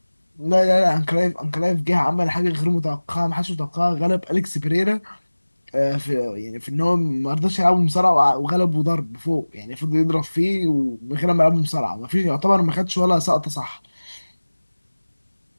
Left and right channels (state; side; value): inverted; both; correlation -1.00